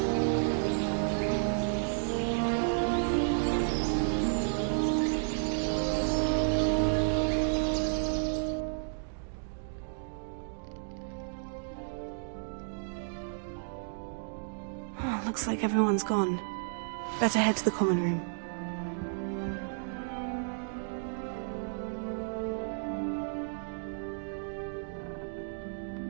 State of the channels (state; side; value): silent; left; digital silence